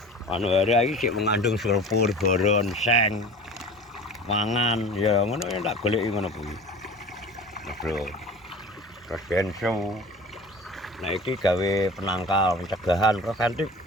anu hari iki sik mengandung sulfur, boron, seng, mangan ya ngono ya tak goleki ngono kuwi. Bro. Terus benso. Nah iki gawe penangkal, pencegahan preventif,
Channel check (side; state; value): both; normal; correlation 0.39